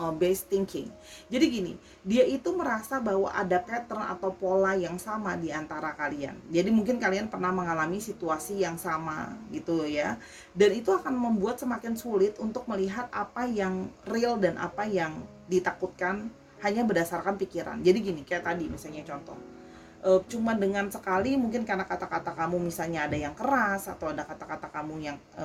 based thinking. Jadi gini, dia itu merasa bahwa ada pattern atau pola yang sama di antara kalian. Jadi mungkin kalian pernah mengalami situasi yang sama gitu ya. Dan itu akan membuat semakin sulit untuk melihat apa yang real dan apa yang ditakutkan hanya berdasarkan pikiran. Jadi gini, kayak tadi misalnya contoh. Cuma dengan sekali mungkin karena kata-kata kamu misalnya ada yang keras atau ada kata-kata kamu yang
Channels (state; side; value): identical; both; correlation 1.00